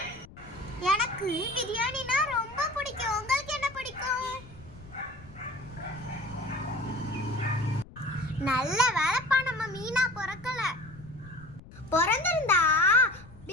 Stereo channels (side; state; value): left; noise; rumble, 19 dB below the sound